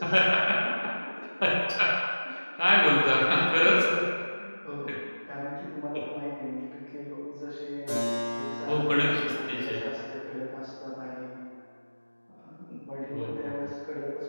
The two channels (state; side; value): inverted; both; correlation -1.00